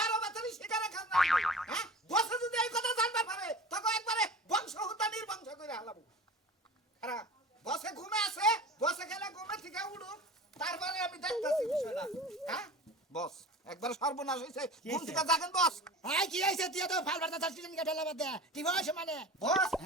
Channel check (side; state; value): both; normal; correlation 0.36